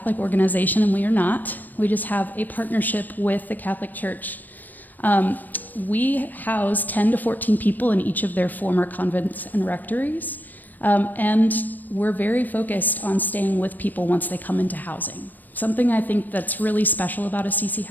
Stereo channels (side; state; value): right; late; 0.087 ms